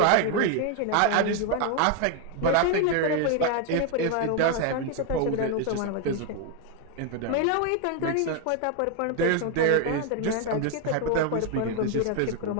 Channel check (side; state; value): both; different; correlation 0.01